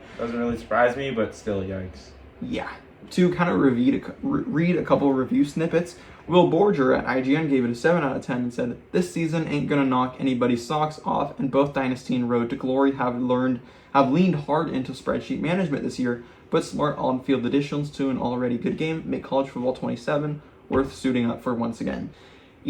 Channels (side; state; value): both; identical; correlation 1.00